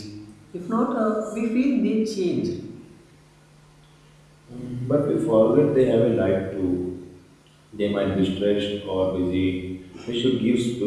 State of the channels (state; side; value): identical; both; correlation 1.00